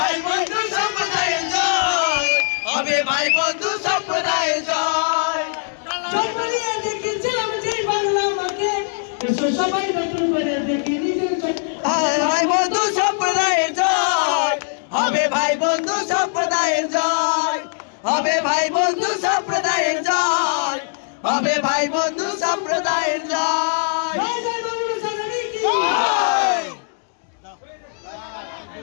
বন্ধু সম্প্রদায়ের জয়, হবে ভাই বন্ধু সম্প্রদায়ের জয়। সবাই দেখেছিলাম যে বাংলা মাকে, সবাই নতুন করে দেখি নিজের ভাই বন্ধু সম্প্রদায়ের জয়, হবে ভাই বন্ধু সম্প্রদায়ের জয়, হবে ভাই বন্ধু সম্প্রদায়ের জয়, হবে ভাই বন্ধু সম্প্রদায়ের জয়।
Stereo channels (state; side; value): silent; right; digital silence